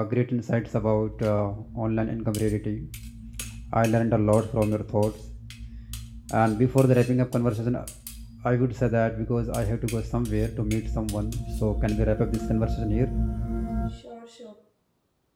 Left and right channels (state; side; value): identical; both; correlation 1.00